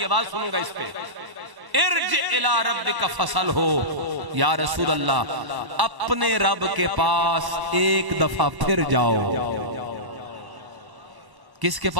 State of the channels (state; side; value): late; left; 1.1 ms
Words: آواز سنوں گا اس پہ ارجع الى ربک فصل ہو یا رسول اللہ اپنے رب کے پاس ایک دفعہ پھر جاؤ کس کے